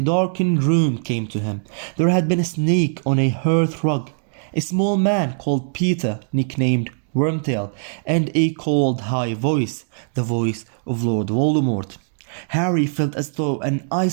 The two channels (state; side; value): silent; left; digital silence